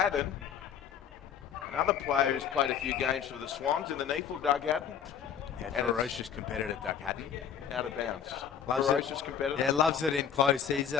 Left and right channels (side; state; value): right; quieter; 8.6 dB